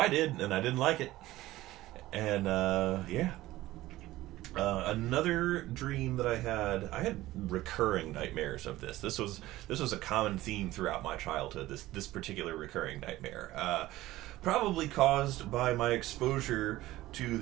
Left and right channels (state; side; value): quieter; left; 16.6 dB